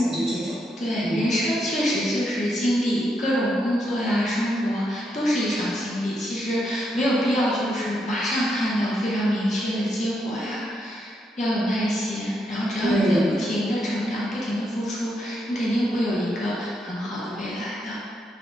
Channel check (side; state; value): both; normal; correlation 0.80